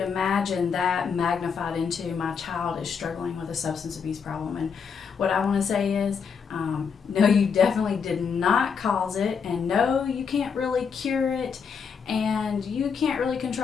that magnified into my child is struggling with a substance abuse problem. And what I want to say is, no, you definitely did not cause it, and no, you can't really cure it, and you can't really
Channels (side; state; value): right; quieter; 6.3 dB